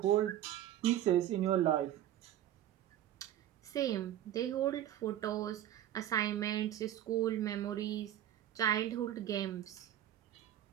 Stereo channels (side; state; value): left; quieter; 12.0 dB